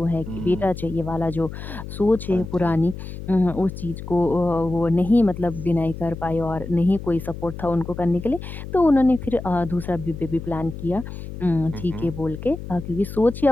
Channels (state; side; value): noise; left; hum, 10 dB below the sound